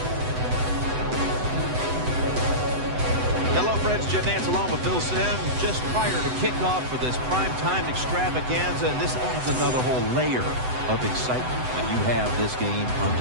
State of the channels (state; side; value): late; left; 7.9 ms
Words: Hello, friends. Jim Nantz along with Phil Simms just prior to kickoff for this primetime extravaganza, and this adds another whole layer of excitement when you have this game